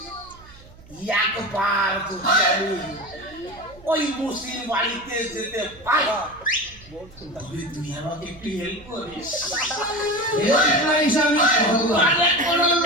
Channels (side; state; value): right; noise; hum, 23 dB below the sound